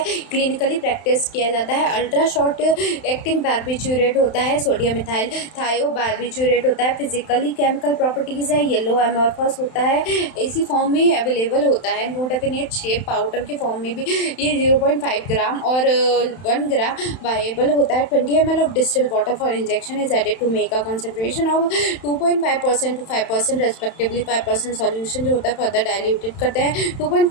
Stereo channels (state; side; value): late; right; 31 ms